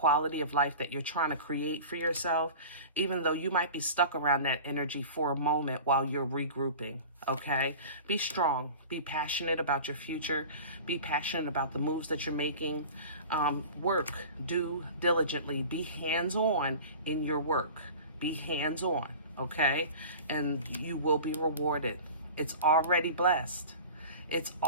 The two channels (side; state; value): both; inverted; correlation -0.37